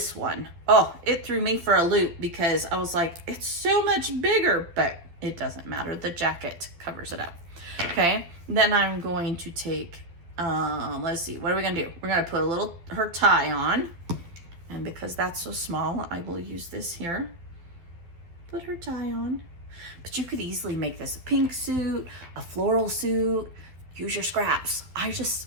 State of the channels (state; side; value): late; left; 12 ms